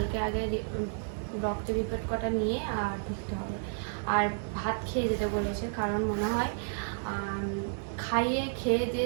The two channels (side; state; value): left; silent; digital silence